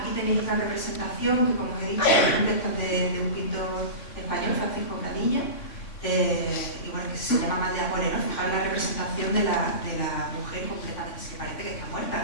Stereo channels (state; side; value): late; right; 3.5 ms